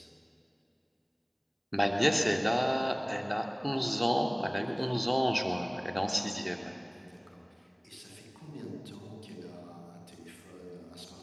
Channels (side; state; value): both; identical; correlation 1.00